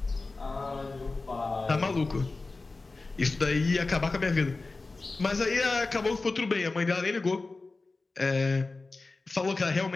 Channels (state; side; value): quieter; right; 3.6 dB